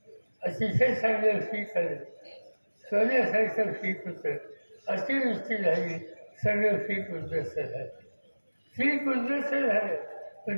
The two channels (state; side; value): inverted; both; correlation -1.00